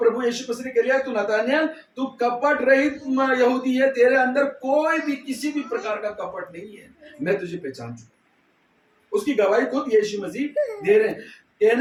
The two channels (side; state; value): both; identical; correlation 1.00